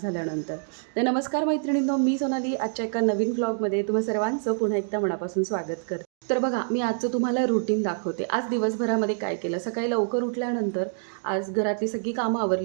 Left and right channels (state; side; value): silent; left; digital silence